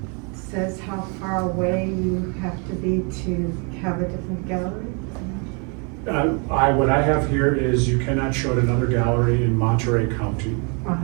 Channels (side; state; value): left; quieter; 35.2 dB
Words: says how far away you have to be to have a different gallery? What I have here is you cannot show at another gallery in Monterey County,